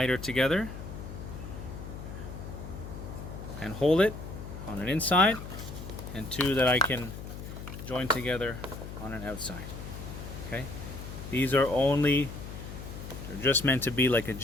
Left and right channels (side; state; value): left; noise; hum, 10 dB below the sound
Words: together and hold it on an inside, and two that I can join together on an outside. Okay, these are they're just meant to be like a